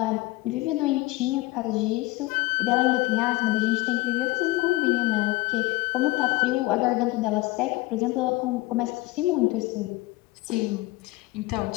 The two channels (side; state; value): right; quieter; 20.2 dB